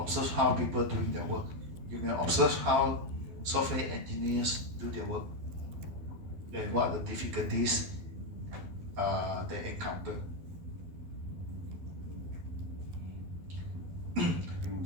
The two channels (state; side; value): late; left; 12 ms